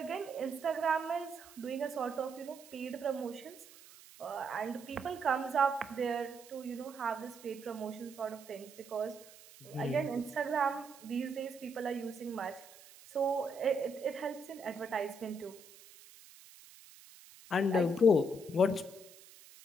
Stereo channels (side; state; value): right; noise; hiss, 20 dB below the sound